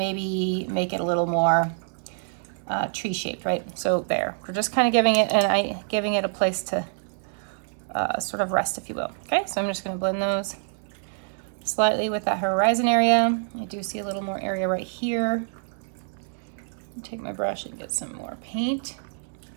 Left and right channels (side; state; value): left; silent; digital silence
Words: make it a little more tree shaped, right? So there, we're just kind of giving it a place to sort of rest, if you will. Okay, so I'm just gonna blend those slightly with that horizon area. I do see a little more area right here. Take my brush and get some more paint.